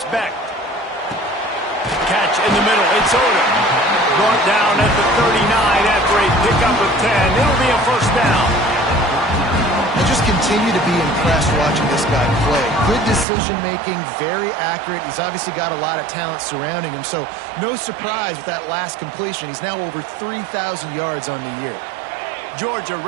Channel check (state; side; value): drops out; left; at 13.2 s